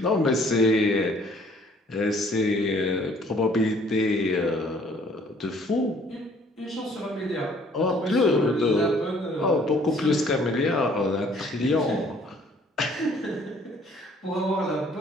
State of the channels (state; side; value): normal; both; correlation 0.58